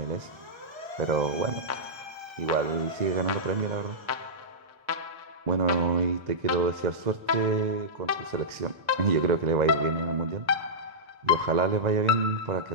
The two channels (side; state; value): left; late; 1.3 ms